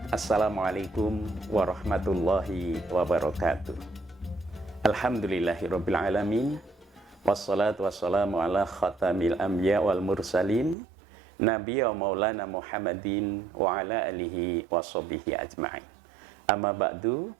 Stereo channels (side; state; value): left; drops out; at 10.8 s